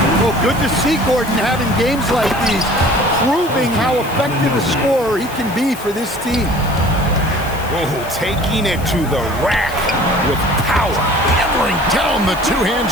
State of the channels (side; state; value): left; noise; hiss, 17 dB below the sound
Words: Well, good to see Gordon having games like these, proving how effective a scorer he can be for this team. Oh, taking it to the rack with power. Hammering down the two-hand